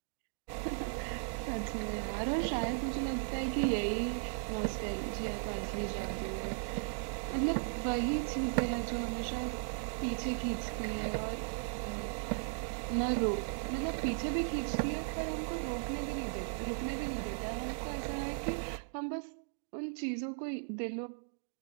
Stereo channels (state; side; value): silent; left; digital silence